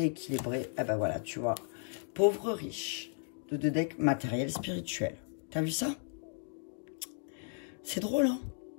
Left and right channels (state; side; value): silent; right; 55 dB below the other